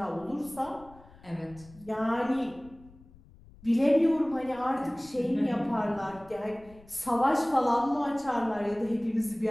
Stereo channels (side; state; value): left; noise; rumble, 24 dB below the sound